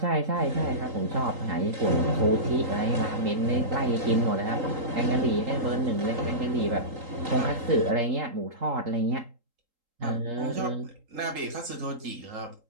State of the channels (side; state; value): left; late; 3.8 ms